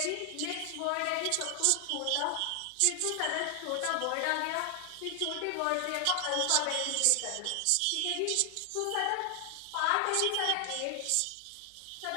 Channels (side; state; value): both; different; correlation 0.00